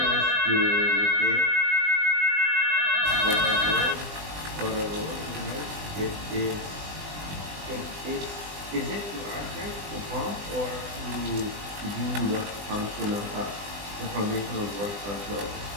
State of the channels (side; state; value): left; late; 20 ms